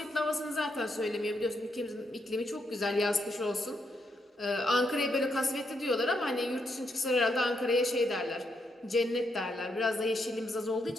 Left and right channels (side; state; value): both; normal; correlation 0.79